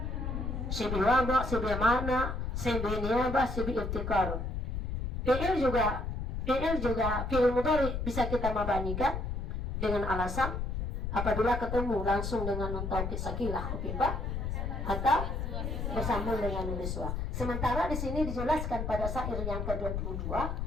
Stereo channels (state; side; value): noise; left; rumble, 3 dB below the sound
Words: Sibi wada, sibi mana, sibi niabah, sibi ibtikar. Fi'il juga fi'il mudhari bisa kita mabanikan dengan alasan apabila ketemu langsung dengan nun taukid sakilah khafifah atau bersambung dengan nun niswah. Sementara di sini dijelaskan pada syair yang ke-22